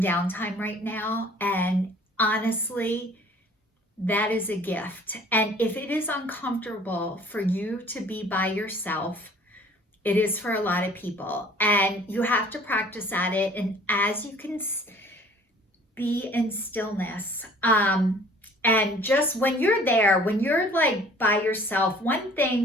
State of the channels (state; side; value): normal; both; correlation 0.52